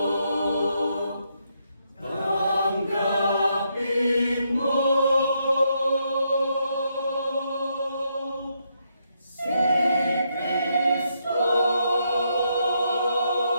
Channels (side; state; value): both; inverted; correlation -0.78